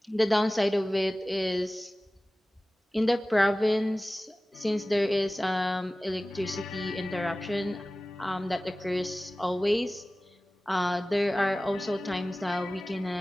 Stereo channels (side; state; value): both; normal; correlation 0.97